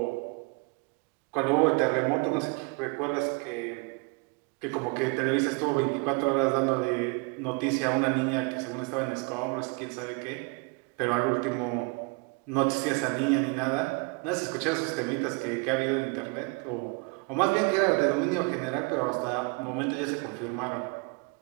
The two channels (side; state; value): left; quieter; 31.3 dB